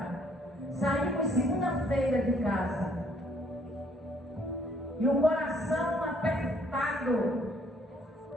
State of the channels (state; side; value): normal; both; correlation 0.64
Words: Saímos segunda-feira de casa. E o coração apertado.